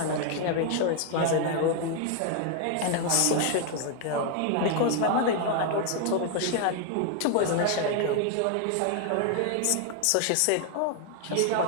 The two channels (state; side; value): different; both; correlation 0.00